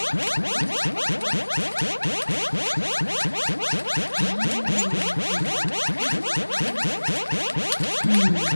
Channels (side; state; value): both; inverted; correlation -1.00